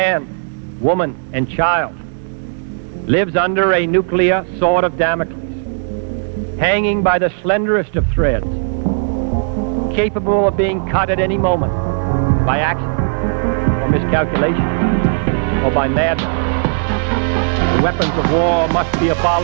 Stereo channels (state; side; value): silent; left; 68 dB below the other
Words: woman, and child lives under a nuclear sword of Damocles, hanging by the slenderest of threads, capable of being cut at any moment by accident or miscalculation or by madness. The weapons of war must be